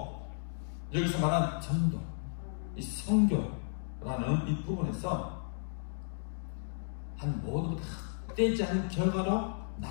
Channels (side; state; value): right; silent; digital silence